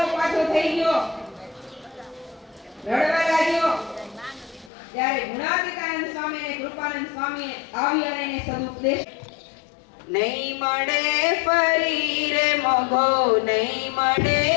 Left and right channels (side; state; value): right; drops out; at 4.7 s